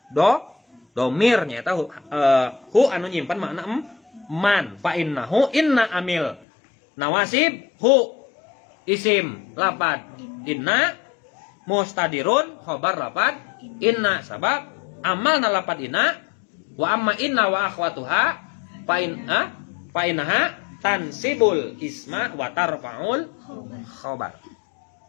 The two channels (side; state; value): right; drops out; at 6.4 s